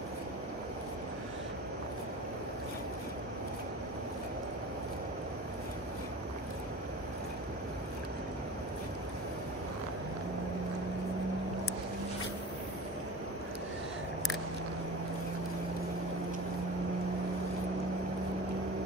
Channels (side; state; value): both; normal; correlation 0.35